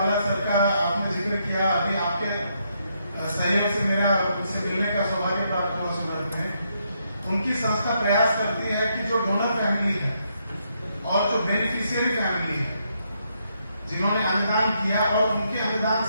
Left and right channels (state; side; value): inverted; both; correlation -0.77